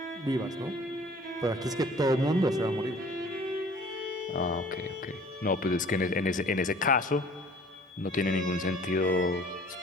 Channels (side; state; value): both; normal; correlation 0.51